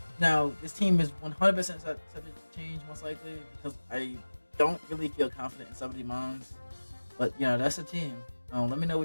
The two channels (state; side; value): inverted; both; correlation -1.00